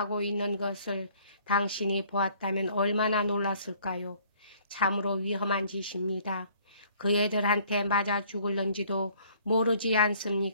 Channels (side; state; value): both; inverted; correlation -0.58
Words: 있는 것을 당신이 보았다면 얼마나 놀랐을까요? 참으로 위험한 짓입니다. 그 애들한테 맞아 죽을런지도 모르지